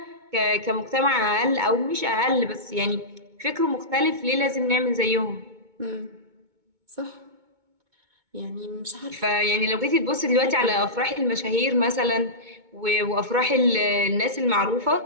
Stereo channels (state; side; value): late; left; 2.2 ms